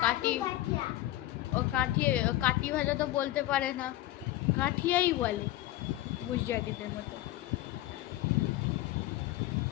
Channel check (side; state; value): right; quieter; 15.6 dB